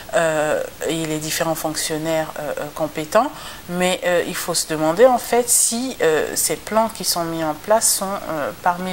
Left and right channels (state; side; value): identical; both; correlation 1.00